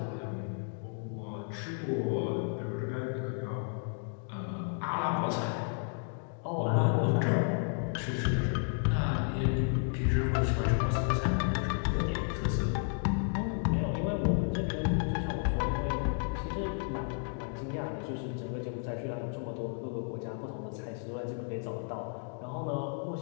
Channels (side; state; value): right; silent; 56 dB below the other